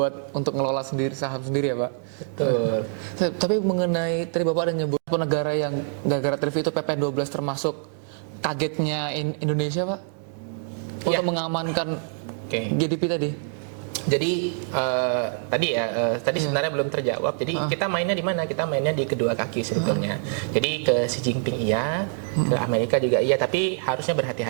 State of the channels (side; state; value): left; silent; 62 dB below the other